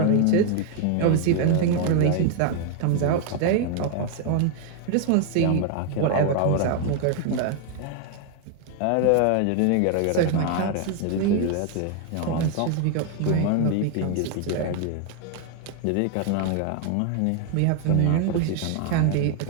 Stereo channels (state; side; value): different; both; correlation 0.00